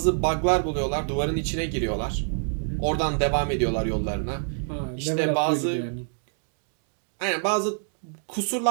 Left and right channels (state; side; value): silent; left; 60 dB below the other